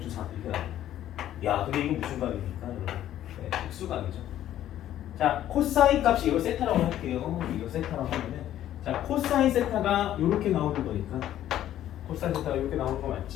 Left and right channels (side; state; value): right; quieter; 12.2 dB